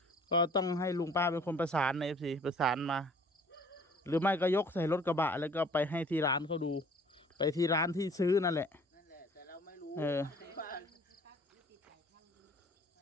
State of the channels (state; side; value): normal; both; correlation 0.53